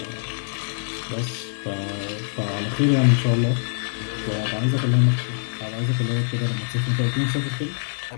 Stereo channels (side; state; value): right; silent; 62 dB below the other